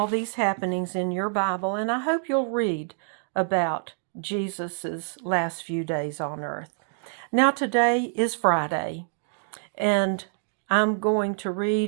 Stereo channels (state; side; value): silent; left; 61 dB below the other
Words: these happenings in your Bible, and I hope you'll read about Jesus's last few days on earth. Now, today is Friday, and I'm going to